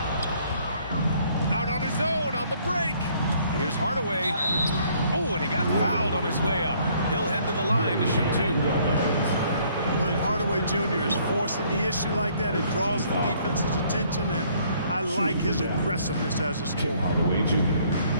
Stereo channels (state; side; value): inverted; both; correlation -0.63